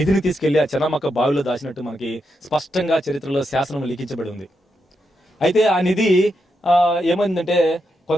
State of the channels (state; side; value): normal; both; correlation 0.84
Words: తీసుకెళ్లి ఆ చెన్నమ్మక్క బావిలో దాచినట్టు మనకి స్పష్టంగా చరిత్రలో శాసనం లిఖించబడి ఉంది. అయితే ఆ నిధి ఏమైందంటే